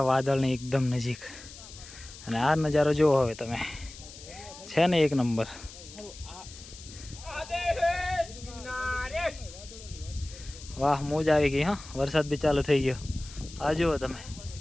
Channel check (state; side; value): noise; left; hiss, 16 dB below the sound